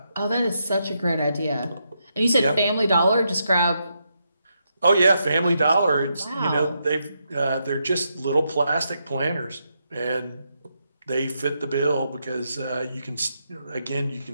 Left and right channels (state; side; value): inverted; both; correlation -0.82